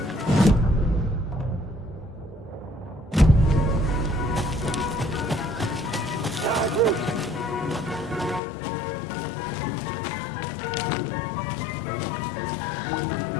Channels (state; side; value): drops out; right; at 8.4 s